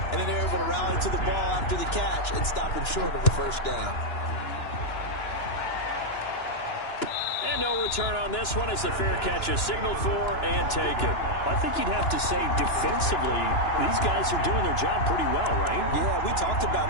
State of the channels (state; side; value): late; right; 2.9 ms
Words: then they're able to rally to the ball after the catch and stop him short of a first down. And no return on this one as the fair catch is signaled for and taken. I think you'd have to say defensively, these guys are doing their job pretty well, right? Yeah, we talked